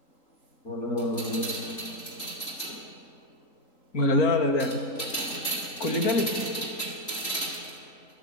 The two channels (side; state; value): right; late; 3.8 ms